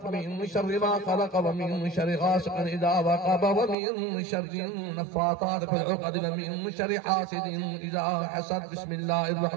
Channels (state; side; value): drops out; left; at 3.8 s